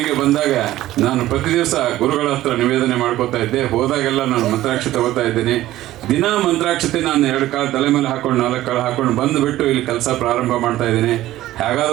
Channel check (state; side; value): quieter; left; 15.0 dB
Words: ಬಂದಾಗ ನಾನು ಪ್ರತಿ ದಿವಸ ಗುರುಗಳ ಹತ್ರ ನಿವೇದನೆ ಮಾಡ್ಕೋತಾ ಇದ್ದೆ. ಹೋದಾಗೆಲ್ಲ ನಾನು ಮಂತ್ರಾಕ್ಷತೆ ತಗೋತಾ ಇದ್ದೇನೆ. ದಿನ ಮಂತ್ರಾಕ್ಷತೆ ನಾನು 2 ಕಾಳು ತಲೆ ಮೇಲೆ ಹಾಕೊಂಡು 4 ಕಾಳು ಹಾಕೊಂಡು ಬಂದುಬಿಟ್ಟು ಇಲ್ಲಿ ಕೆಲಸ ಪ್ರಾರಂಭ ಮಾಡ್ತಾ ಇದ್ದೀನಿ.